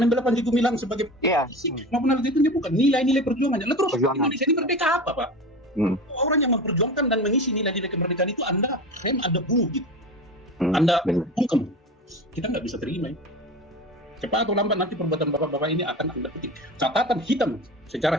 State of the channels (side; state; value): both; normal; correlation 0.30